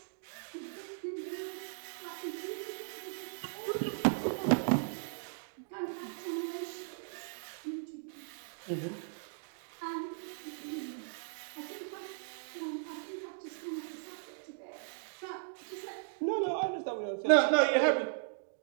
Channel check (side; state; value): left; silent; digital silence